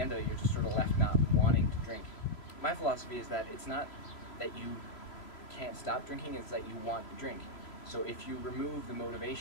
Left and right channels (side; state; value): right; late; 3.0 ms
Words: of it you're just sort of left not wanting to drink. My philosophy is that it's not that you can't stop drinking, it's that you want to drink. So if you remove the